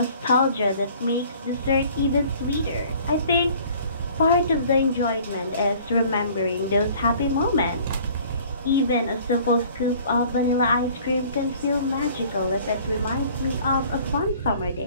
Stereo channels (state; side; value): inverted; both; correlation -0.52